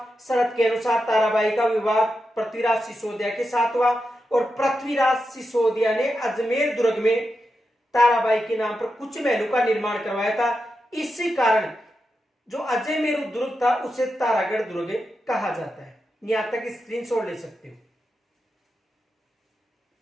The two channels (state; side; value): normal; both; correlation 0.88